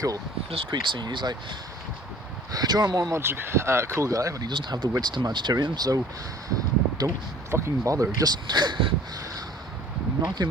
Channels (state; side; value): normal; both; correlation 0.50